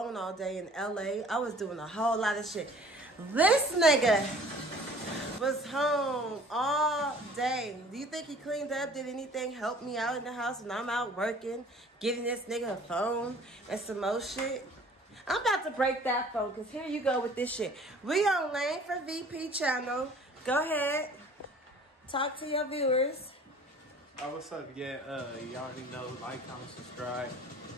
all day in LA. I was doing a whole lot of shit. This nigga was home all day. Do you think he cleaned up? Did anything help me out in the house when I'm out working? Giving this nigga a phone and some more shit? I'm about to break that phone because here you go with this shit. We on Lane for VP channel. Go ahead. Talk to your viewers. Oh, what's up? Yeah, you already know. Like, comment, subscribe.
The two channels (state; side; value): normal; both; correlation 0.50